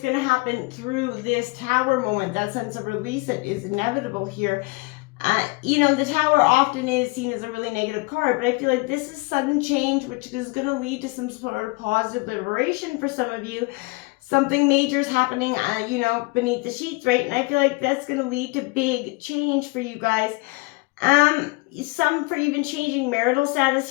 going to happen through this Tower moment, that sense of release that is inevitable here. The Tower often is seen as a really negative card, but I feel like this is sudden change, which is going to lead to some sort of positive liberation for some of you. Something major is happening, beneath the sheets, right? And I feel like that's going to lead to big change for you guys. Some for even changing marital status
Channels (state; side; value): quieter; right; 25.8 dB